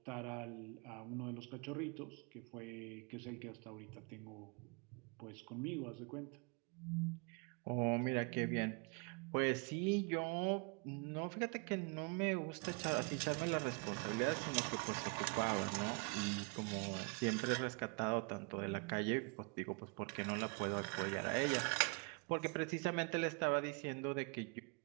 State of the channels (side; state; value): left; quieter; 33.8 dB